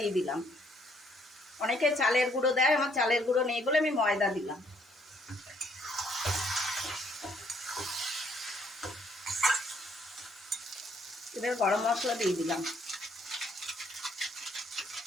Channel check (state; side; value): normal; both; correlation 0.67